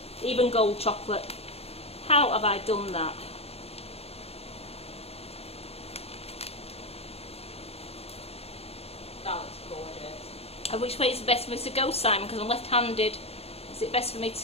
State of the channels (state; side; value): late; right; 0.29 ms